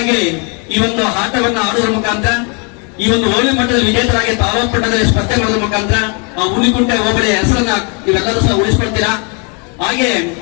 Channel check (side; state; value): right; quieter; 35.3 dB